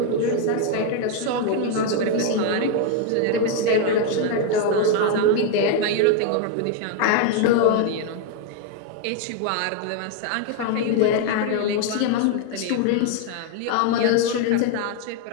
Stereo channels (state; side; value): different; both; correlation 0.01